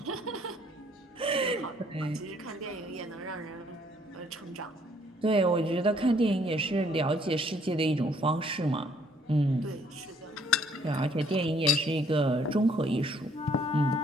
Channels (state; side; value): normal; both; correlation 0.64